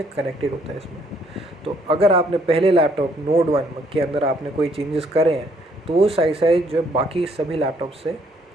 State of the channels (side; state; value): both; normal; correlation 0.66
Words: कनेक्टेड होता है इसमें। तो अगर आपने पहले लैपटॉप नोड 1 के अंदर आपने कोई चेंजेस करे हैं, तो वो साइड साइड जो बाकी सभी लैपटॉप से